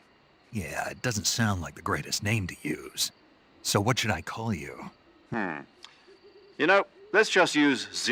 yeah, it doesn't sound like the greatest name to use. So what should I call you? You know, let's just use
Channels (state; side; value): identical; both; correlation 1.00